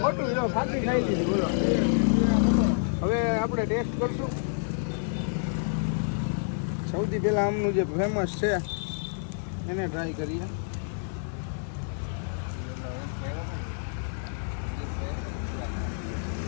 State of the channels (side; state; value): right; silent; 59 dB below the other